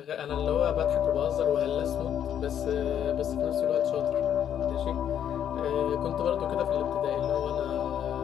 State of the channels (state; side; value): quieter; right; 9.6 dB